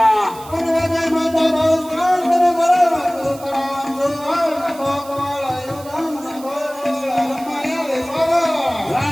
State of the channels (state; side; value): noise; right; hiss, 19 dB below the sound